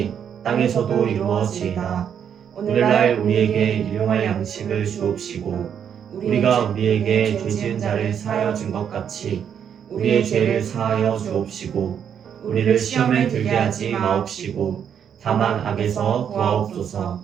땅에서도 이루어지이다. 오늘날 우리에게 일용할 양식을 주옵시고 우리가 우리에게 죄 지은 자를 사하여 준 것 같이 우리의 죄를 사하여 주옵시고 우리를 시험에 들게 하지 마옵시고 다만 악에서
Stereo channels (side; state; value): left; quieter; 8.3 dB